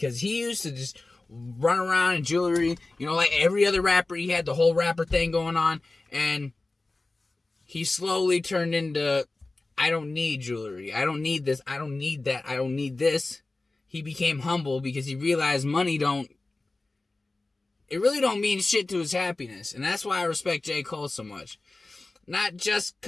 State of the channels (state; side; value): quieter; right; 3.2 dB